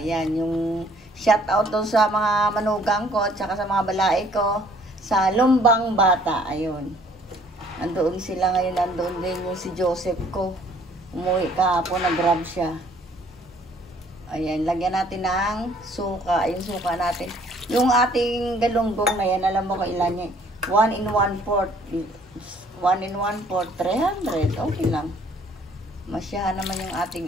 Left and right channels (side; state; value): both; normal; correlation 0.59